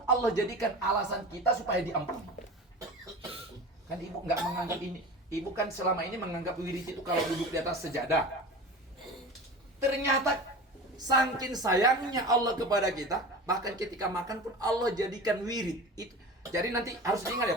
Allah jadikan alasan kita supaya diampuni. Kan ibu nggak menganggap ini. Ibu kan selama ini menganggap wirid itu kalau duduk di atas sejadah. Ternyata saking sayangnya Allah kepada kita, bahkan ketika makan pun Allah jadikan wirid itu. Jadi nanti harus diingat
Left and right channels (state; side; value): normal; both; correlation 0.33